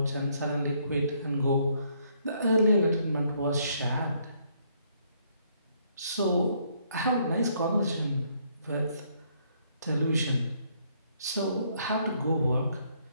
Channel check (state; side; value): inverted; both; correlation -0.69